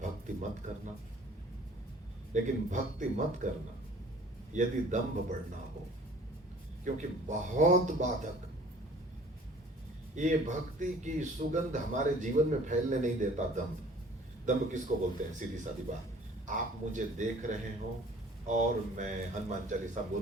भक्ति मत करना, लेकिन भक्ति मत करना यदि दंभ बढ़ना हो, क्योंकि बहुत बाधक ये भक्ति की सुगंध हमारे जीवन में फैलने नहीं देता। दंभ, दंभ किसको बोलते हैं? सीधी सादी बात, आप मुझे देख रहे हो और मैं हनुमान चालीसा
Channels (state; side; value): normal; both; correlation 0.51